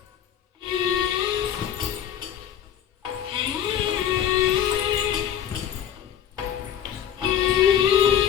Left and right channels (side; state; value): right; quieter; 9.9 dB